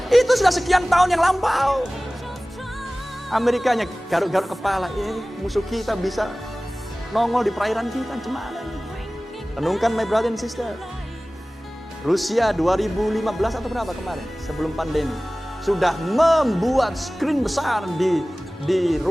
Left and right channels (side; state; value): both; normal; correlation 0.98